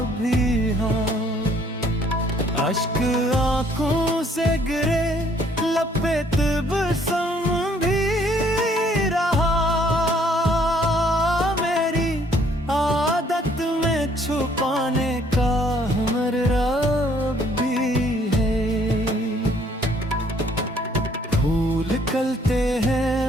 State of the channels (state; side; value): normal; both; correlation 0.63